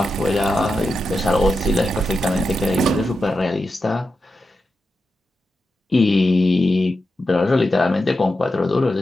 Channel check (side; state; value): both; normal; correlation 0.89